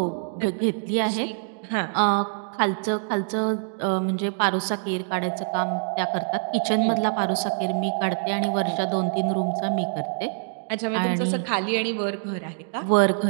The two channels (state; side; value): silent; left; digital silence